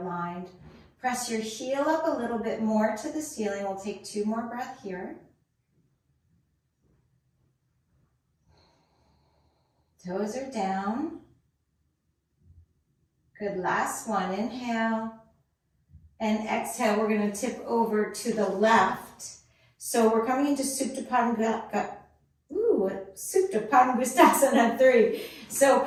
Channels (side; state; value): both; identical; correlation 1.00